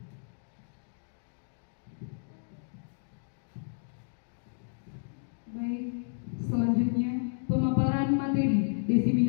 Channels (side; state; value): right; silent; digital silence